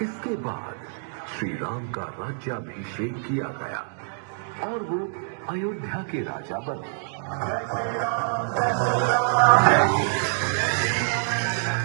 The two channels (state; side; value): silent; left; digital silence